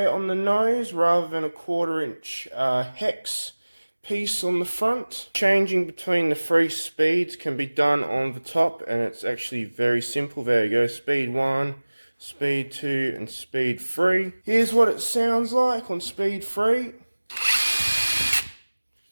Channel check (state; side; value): inverted; both; correlation -1.00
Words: on the nose rather than a 1/4 inch hex piece on the front. Changing between the 3 speeds can be done on the top, and it's actually very simple. There you go, speed 1, speed 2, and speed 3. Here's what it sounds like on speed 3.